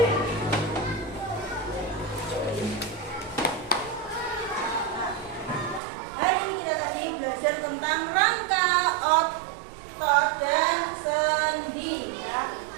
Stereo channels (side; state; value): left; drops out; at 5.8 s